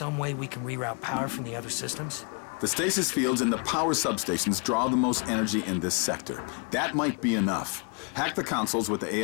way we can reroute power from the other systems? The stasis fields and the power substations draw the most energy in this sector. That might be enough. Hack the consoles with the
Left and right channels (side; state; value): right; quieter; 37.4 dB